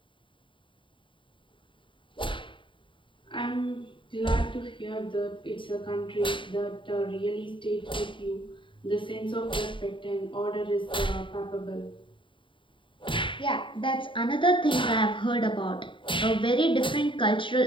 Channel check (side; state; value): right; late; 0.24 ms